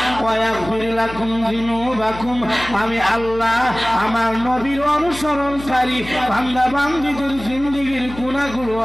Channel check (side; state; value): left; noise; hum, 14 dB below the sound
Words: ওয়া ইয়াগফির লাকুম যুনুবাকুম, আমি আল্লাহ আমার নবীর অনুসরণকারী বান্দা বান্দীদের জিন্দেগীর গুনাহগুলো